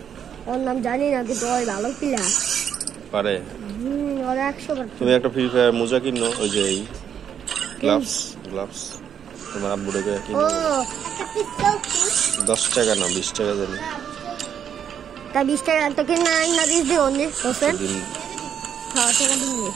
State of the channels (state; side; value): quieter; left; 8.5 dB